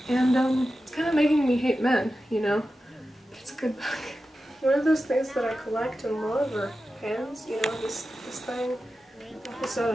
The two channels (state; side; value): normal; both; correlation 0.92